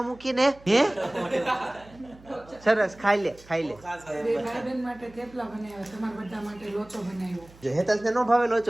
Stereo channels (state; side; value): noise; right; hum, 24 dB below the sound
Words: મૂકીને? હે સરસ, ખાઈ લે. ભાઈબંધ માટે થેપલા બનાવ્યા, તમારા બધા માટે લોચો બનાવ્યો. જો હેતલને નો ભાવે